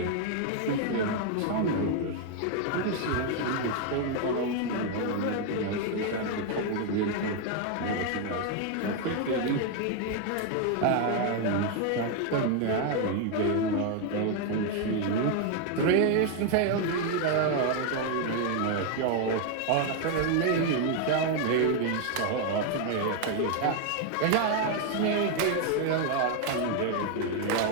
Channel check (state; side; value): different; both; correlation 0.01